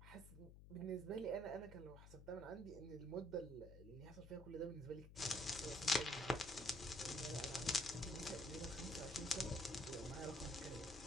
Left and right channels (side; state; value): left; noise; hum, 15 dB below the sound